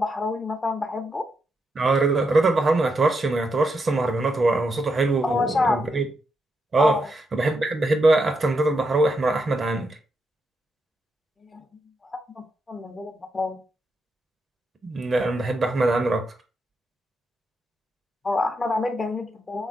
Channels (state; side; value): normal; both; correlation 0.83